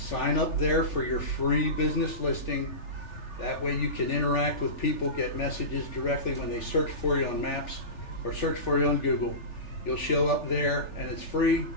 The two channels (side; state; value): right; late; 3.4 ms